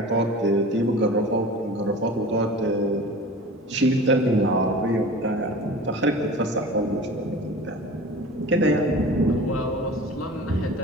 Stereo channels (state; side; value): normal; both; correlation 0.38